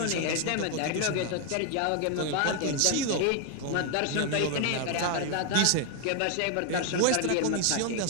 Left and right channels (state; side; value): different; both; correlation 0.00